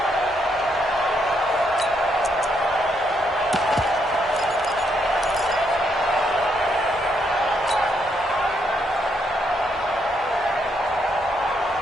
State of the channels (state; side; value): normal; both; correlation 0.76